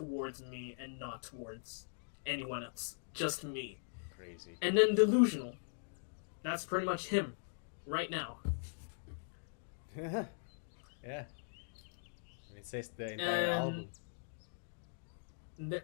me and not towards anyone else, just me. Crazy. And then delusional. That's pretty much him, right now. Yeah. And it says the entire album.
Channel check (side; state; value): right; silent; digital silence